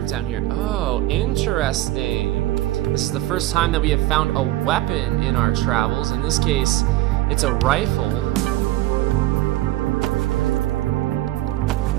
down here. Oh, interesting. This is the first time that we have found a weapon in our travels. In this case, it's a rifle.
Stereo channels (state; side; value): quieter; left; 16.2 dB